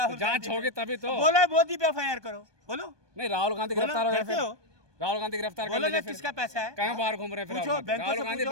जांच गांधी होगी पे- तभी तो। बोलो मोदी पे एफआईआर करो, बोलो नहीं, राहुल गांधी बोलो, गिरफ्तार हो गए करते फिर। हो? राहुल गांधी गिरफ्तार कर बोलो ना लीजिए फिर। किसका पैसा है? कहाँ बाहर घूम रहे हैं फिर पूछो राहुल गांधी? बैंकों राहुल से गांधी पूछो।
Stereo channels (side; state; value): left; late; 1.2 ms